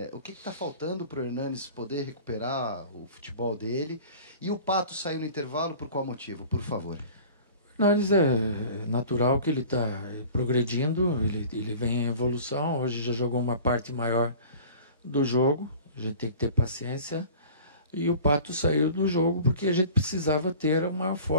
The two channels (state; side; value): inverted; both; correlation -0.43